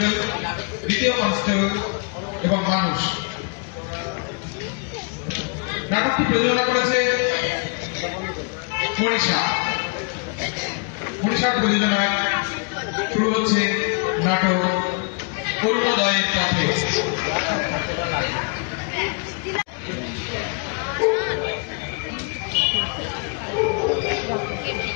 দ্বিতীয় কনস্টেবল এবং মানুষ। নাটকটি প্রযোজনা করেছে মনীষার প্রযোজনায় শুরু হচ্ছে নাটক অরুণোদয়ের পথে।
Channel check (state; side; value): quieter; right; 36.8 dB